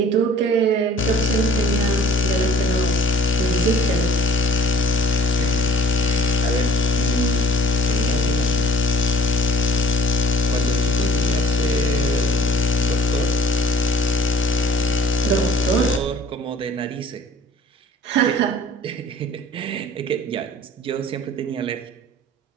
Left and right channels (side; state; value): both; normal; correlation 0.51